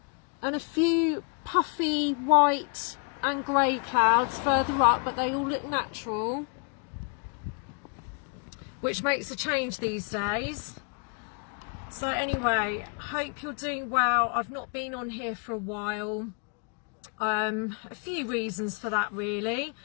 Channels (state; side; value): quieter; right; 37.0 dB